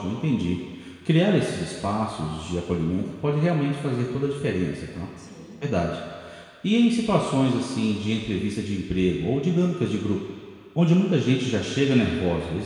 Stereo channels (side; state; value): both; identical; correlation 1.00